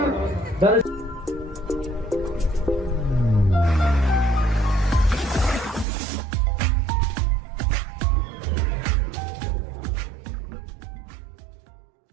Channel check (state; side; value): drops out; left; at 5.9 s